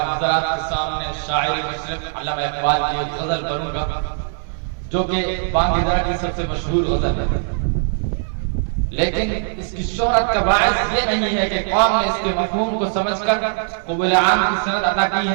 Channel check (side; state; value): left; silent; 65 dB below the other